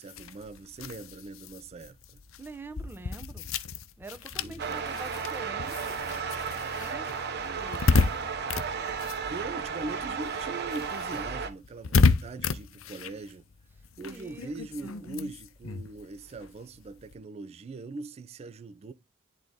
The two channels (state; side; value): normal; both; correlation 0.52